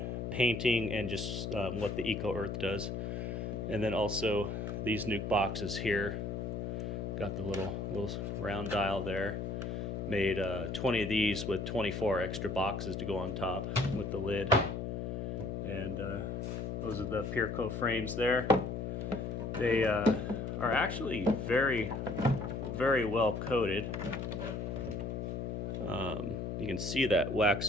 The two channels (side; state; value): left; noise; hum, 3 dB below the sound